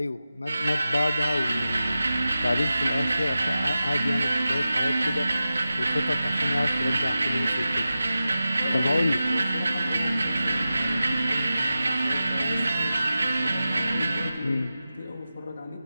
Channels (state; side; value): inverted; both; correlation -0.93